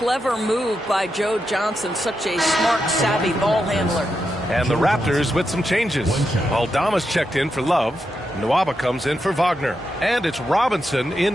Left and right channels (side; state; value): both; normal; correlation 0.85